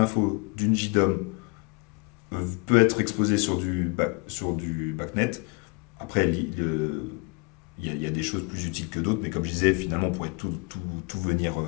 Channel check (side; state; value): right; quieter; 29.7 dB